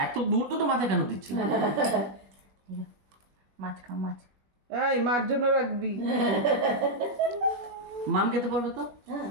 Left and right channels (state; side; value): late; left; 20 ms